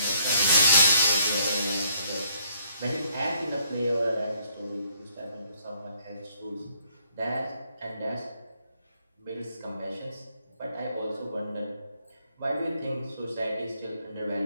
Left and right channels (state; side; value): inverted; both; correlation -0.68